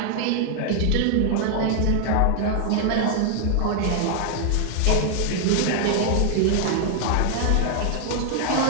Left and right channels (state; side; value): different; both; correlation 0.00